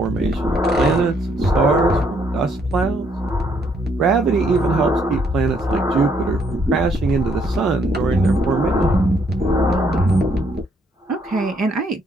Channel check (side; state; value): both; normal; correlation 0.70